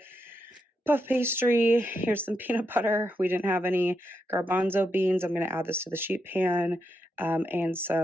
Puff pastry. Here's some peanut butter. We didn't have any garbanzo beans. I'm going to add this to the sheet pan. And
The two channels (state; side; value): normal; both; correlation 0.83